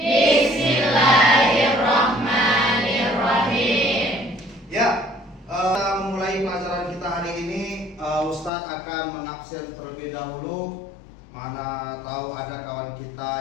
Ya, kita memulai pelajaran kita hari ini. Ustadz akan mengabsen terlebih dahulu. Mana tahu ada kawan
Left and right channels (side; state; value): right; drops out; at 8.5 s